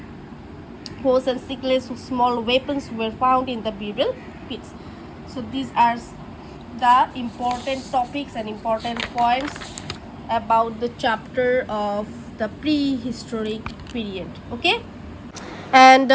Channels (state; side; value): identical; both; correlation 1.00